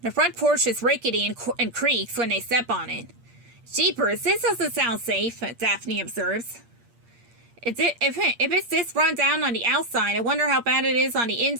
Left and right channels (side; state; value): left; late; 8.6 ms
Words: The front porch is rickety and creaks when they step on it. Jeepers, this doesn't sound safe, Daphne observes. If it's this run down on the outside, I wonder how bad it is on the